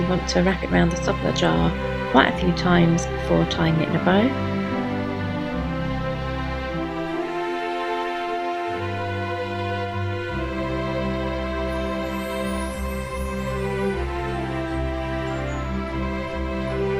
want to wrap it around the top of the jar quite a few times before tying it in a bow.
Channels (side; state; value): both; identical; correlation 1.00